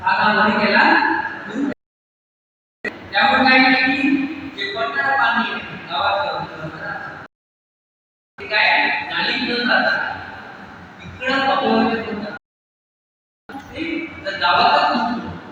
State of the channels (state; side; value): identical; both; correlation 1.00